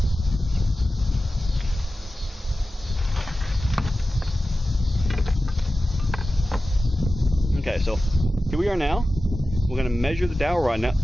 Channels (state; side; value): normal; both; correlation 0.94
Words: Okay, so here we are now. we're going to measure the dowel rod. Now,